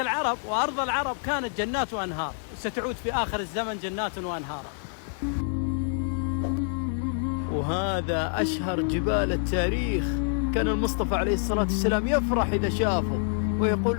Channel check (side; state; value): right; silent; digital silence